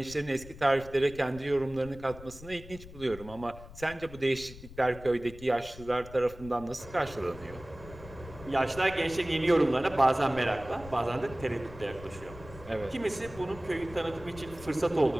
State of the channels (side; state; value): left; noise; rumble, 16 dB below the sound